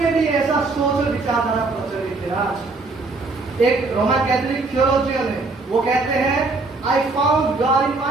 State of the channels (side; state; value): left; quieter; 3.6 dB